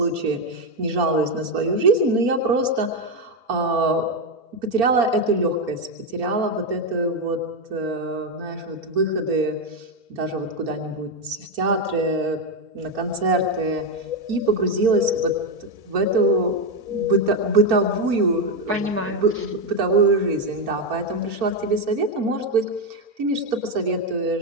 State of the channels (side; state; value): left; late; 4.4 ms